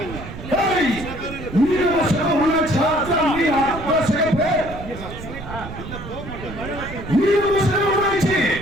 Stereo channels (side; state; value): right; noise; rumble, 11 dB below the sound